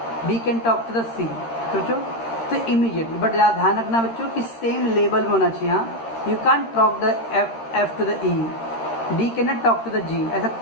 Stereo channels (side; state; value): right; late; 13 ms